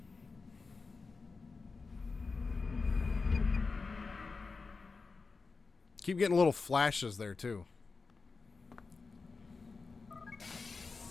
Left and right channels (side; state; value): right; quieter; 4.3 dB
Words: Keep getting little flashes there, too.